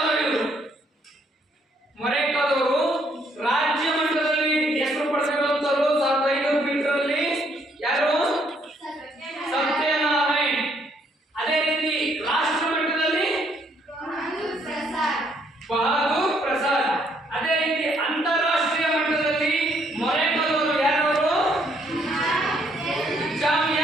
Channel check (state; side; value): normal; both; correlation 0.69